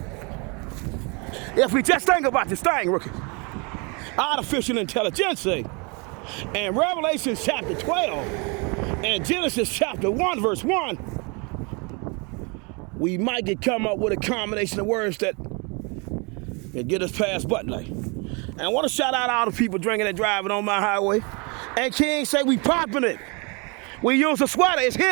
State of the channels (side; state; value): left; quieter; 31.4 dB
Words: if we just think about this thing, rookie, artificial intelligence, and Revelation chapter 12 and Genesis chapter 1 verse 1, we might come up with a combination of words that get us past butt light. And I want to shout out all the people drinking and driving on my highway. And King say we popping it. We use a sweater. It's